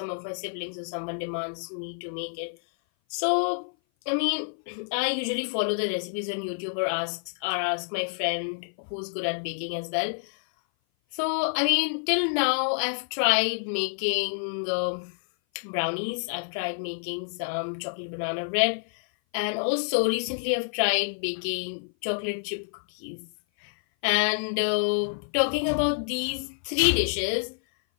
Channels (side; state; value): right; silent; 56 dB below the other